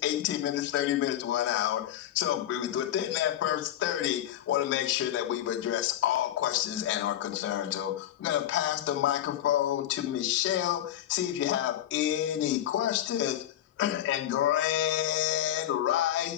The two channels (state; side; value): quieter; right; 12.0 dB